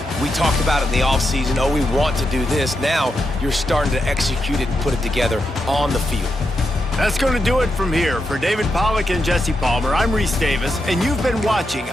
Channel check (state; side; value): normal; both; correlation 0.85